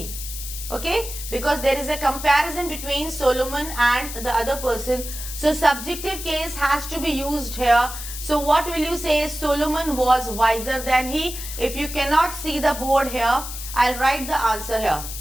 Okay? Because there is a comparison between Solomon and the other person. So subjective case has to be used here. So what will you say? Solomon was wiser than he. If you cannot see the board here, I'll write the answer here.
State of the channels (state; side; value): noise; left; hiss, 9 dB below the sound